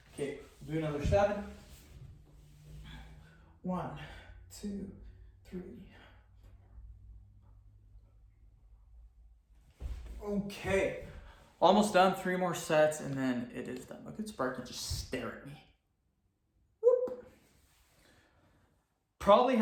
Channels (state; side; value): identical; both; correlation 1.00